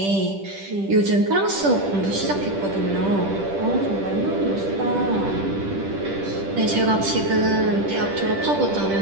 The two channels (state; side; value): late; left; 10 ms